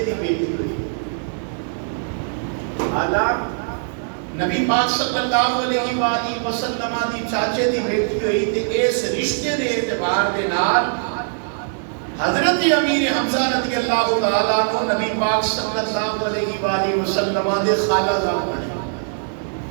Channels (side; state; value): left; silent; digital silence